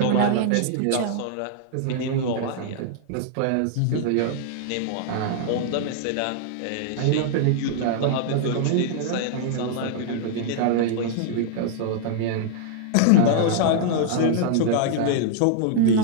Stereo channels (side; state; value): both; different; correlation -0.01